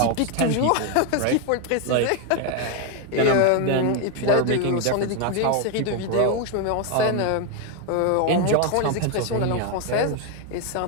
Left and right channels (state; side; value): different; both; correlation 0.01